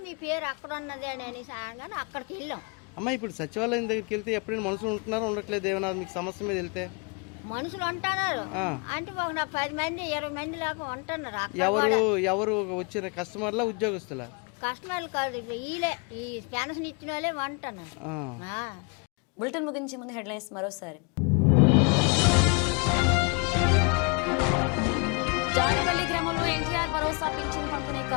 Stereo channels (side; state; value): right; quieter; 33.9 dB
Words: మీ పేరు అక్కడ ఉన్నది అని సాయంగానే అక్కడికి వెళ్ళాం. అమ్మ ఇప్పుడు సచివాలయం దగ్గరికి వెళ్తే ఎప్పుడైనా మనుషులు ఉంటున్నారో ఉండట్లేదు, ఏమైనా మీకు సమస్య మీద వెళ్తే మనుషులు ఉంటున్నారు అంటే ఒక 10 మంది 20 మంది లేక ఉంటున్నారు. ఎవరు వచ్చిన కస్టమర్లా ఉద్యోగస్తులా? కస్టమర్లు కాదు, వీళ్ళే ఈ పెన్షన్ ఇచ్చిన వాళ్ళే ఉంటున్నారు. బులెటిన్ ముగించే ముందు హెడ్లైన్స్ మరోసారి. జాడిపల్లి గ్రామంలో ఎన్టీఆర్ భరోసా పింఛన్ పంపిణీ